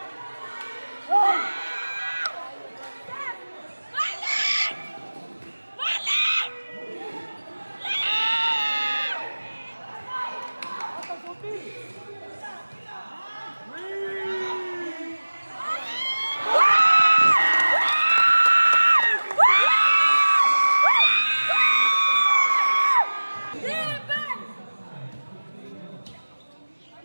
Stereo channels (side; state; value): both; inverted; correlation -1.00